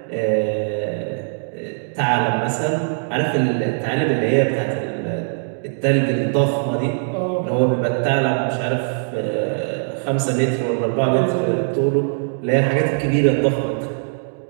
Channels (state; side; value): silent; left; digital silence